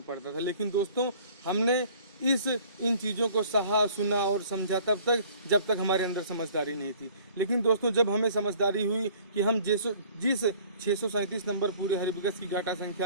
पड़ता था। लेकिन दोस्तों हमने इन चीज़ों को सहा, सुना और समझा तब तक जब तक हमारे अंदर समझदारी नहीं थी। लेकिन दोस्तों जब हमें समझदारी हुई कि हम जिस 637 नंबर पूरे हरिबकस की गाटा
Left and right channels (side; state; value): both; inverted; correlation -0.52